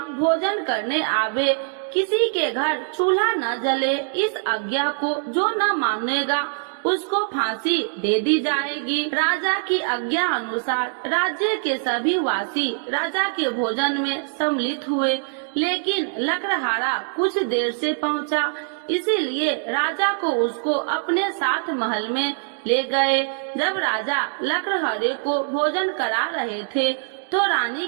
भोजन करने आवे, किसी के घर चूल्हा न जले। इस आज्ञा को जो न मानेगा उसको फांसी दे दी जाएगी। राजा की आज्ञा अनुसार राज्य के सभी वासी राजा के भोजन में सम्मिलित हुए, लेकिन लकड़हारा कुछ देर से पहुंचा, इसीलिए राजा को उसको अपने साथ महल में ले गए। जब राजा लकड़हारे को भोजन करा रहे थे तो रानी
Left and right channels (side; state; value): left; silent; digital silence